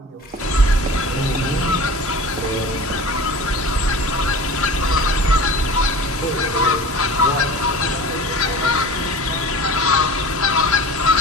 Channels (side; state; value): both; normal; correlation 0.38